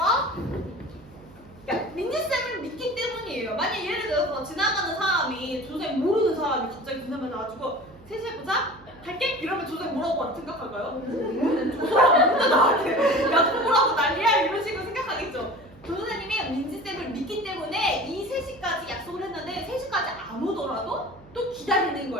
그러니까 민지쌤을 믿기 때문이에요. 만약 예를 들어서 지나가는 사람이 조쌤 모르는 사람이 갑자기 조쌤한테 나와가지고 셋이 보자? 갈게? 이러면 조쌤 뭐라고 생각할까요? 저 사람 뭔데 나한테 약속을 하고 난리야 이런 식으로 생각하겠죠. 조선생님이 민지쌤을 믿기 때문에 이 3시까지 약속을 했는데 3시까지 안 오더라도 또 기다리는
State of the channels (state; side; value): noise; right; hum, 23 dB below the sound